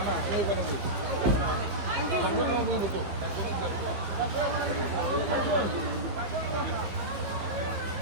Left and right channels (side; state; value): left; late; 15 ms